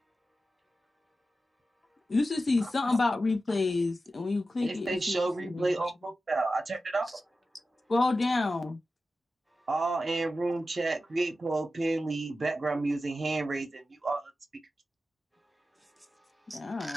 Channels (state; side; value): normal; both; correlation 0.93